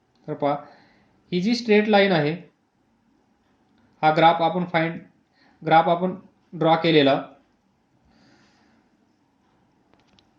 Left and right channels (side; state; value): both; identical; correlation 1.00